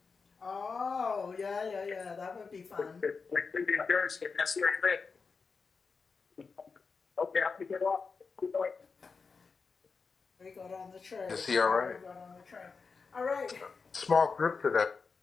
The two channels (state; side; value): quieter; right; 4.9 dB